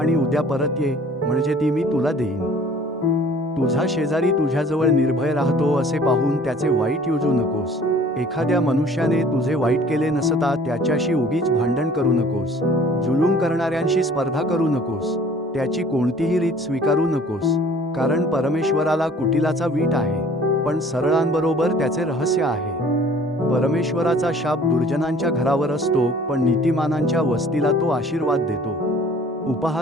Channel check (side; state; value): both; normal; correlation 0.52